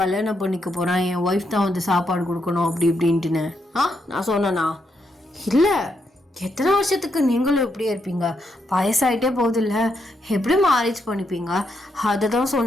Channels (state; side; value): normal; both; correlation 0.80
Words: கல்யாணம் பண்ணிக்க போகிறேன், என் ஒய்ஃப் தான் வந்து சாப்பாடு கொடுக்கணும் அப்படி இப்படின்ட்டுன்னு? நான் சொன்னேனா? இல்லை. எத்தனை வருஷத்துக்கு நீங்களும் இப்படியே இருப்பீங்க? வயசாயிட்டே போகுதில்ல, எப்படி மேரேஜ் பண்ணிப்பீங்க? அதை தான்